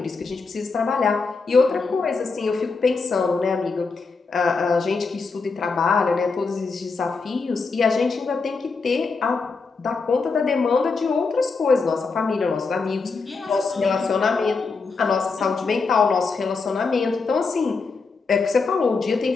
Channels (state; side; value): quieter; right; 4.5 dB